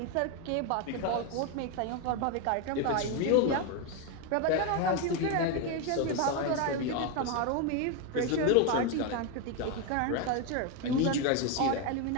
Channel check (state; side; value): different; both; correlation 0.02